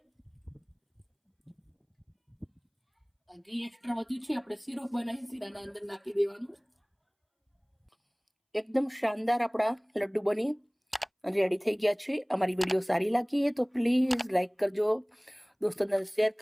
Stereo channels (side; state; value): both; identical; correlation 1.00